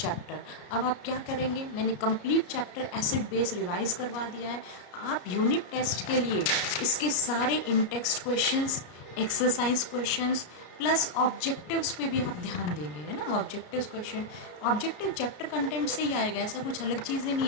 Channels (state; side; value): late; right; 33 ms